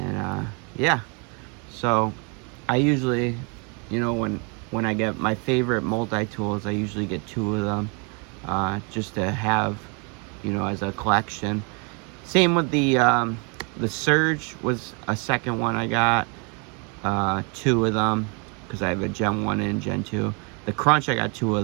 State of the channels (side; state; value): left; quieter; 34.8 dB